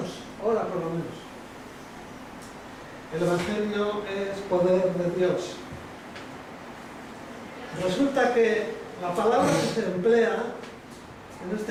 ora por lo menos. El Evangelio es poder de Dios. Resulta que la palabra que se emplea, en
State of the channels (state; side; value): identical; both; correlation 1.00